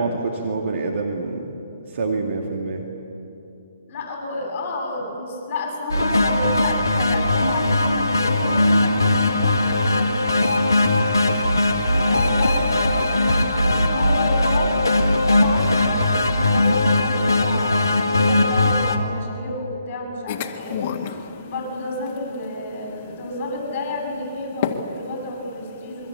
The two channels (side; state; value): both; inverted; correlation -0.81